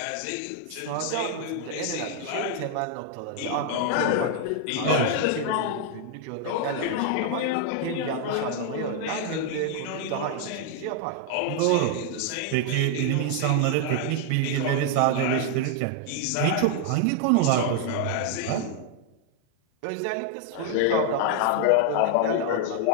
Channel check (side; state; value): both; different; correlation 0.00